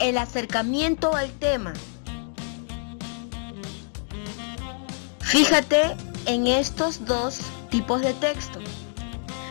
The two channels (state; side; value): silent; right; 59 dB below the other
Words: el acercamiento al tema. Fíjate en estos dos tipos de texto.